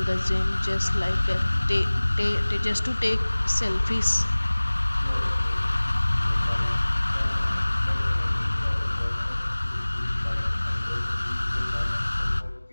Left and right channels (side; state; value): both; inverted; correlation -1.00